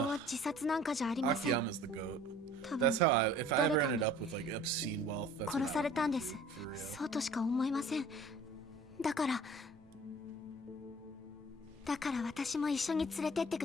自殺なんかじゃありません。 Akiyama's the goat. 多分 That's how if I ever ended up with like obscene wealth, that's what 殺さ I れ would たんです。 do, for real. そうとしか思えません。だから私も一緒に連れてって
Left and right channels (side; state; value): both; normal; correlation 0.50